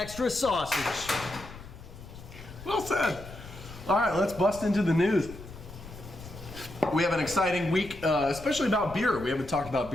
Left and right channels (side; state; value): left; noise; rumble, 15 dB below the sound